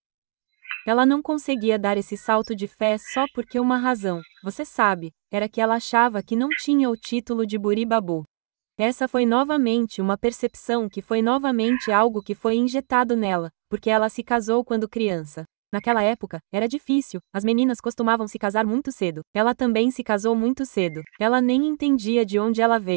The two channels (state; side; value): silent; left; 57 dB below the other